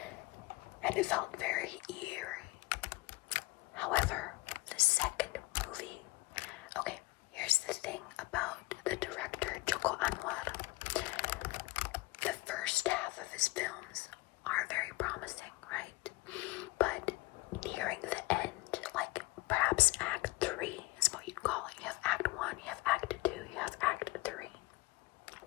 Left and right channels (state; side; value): quieter; right; 21.9 dB